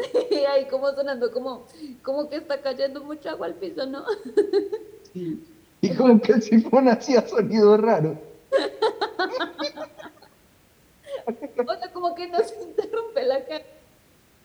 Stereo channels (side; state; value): both; identical; correlation 1.00